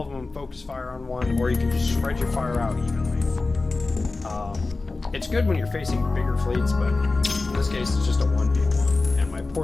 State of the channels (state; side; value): quieter; right; 3.6 dB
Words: of them focus fire on one, or you can just spread your fire out evenly. It's good when you're facing bigger fleets, but in this case it's just a 1v1, and my